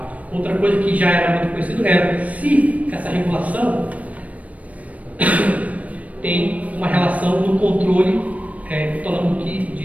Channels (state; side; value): late; left; 0.068 ms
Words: Outra coisa que já era muito conhecido era se essa regulação tem uma relação no controle